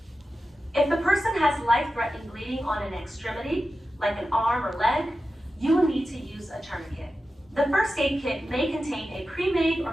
If the person has life-threatening bleeding on an extremity, like an arm or leg, you will need to use a tourniquet. The first aid kit may contain a pre-made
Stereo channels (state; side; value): normal; both; correlation 0.92